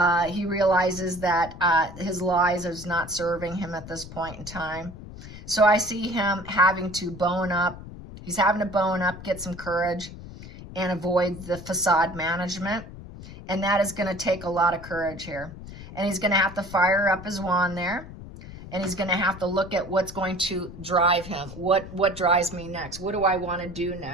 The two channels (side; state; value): left; noise; rumble, 14 dB below the sound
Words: He realizes that his lies is not serving him at this point in time. So I see him having to bone up. He's having to bone up, get some courage, and avoid the facade management. And that is going to take a lot of courage here. And he's going to have to fire up his wand there. And he's going to have to look at what's going to drive him. What drives me next? What do I want to do